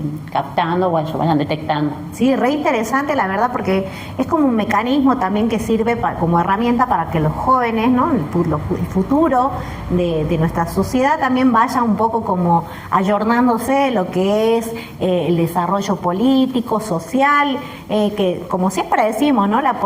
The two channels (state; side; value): identical; both; correlation 1.00